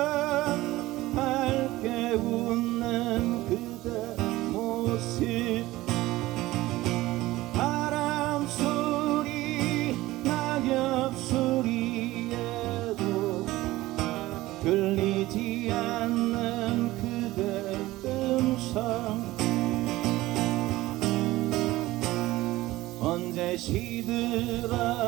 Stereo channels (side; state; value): left; quieter; 17.8 dB